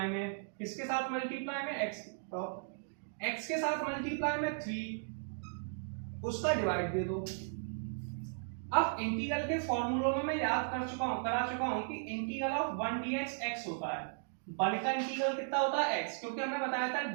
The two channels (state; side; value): silent; left; digital silence